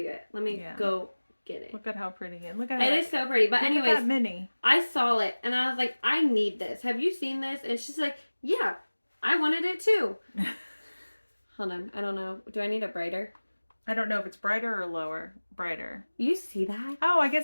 it. Let me go get it. Look at how pretty it is. Look at it. It is so pretty. But anyways, that mini. I saw it and I was like, I need this. Have you seen this? And she's like, yeah, I wanted it too. Hold on. I don't know. Do I need it brighter? I don't know if it's brighter or lower. Brighter. You see that? Oh, I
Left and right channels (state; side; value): inverted; both; correlation -1.00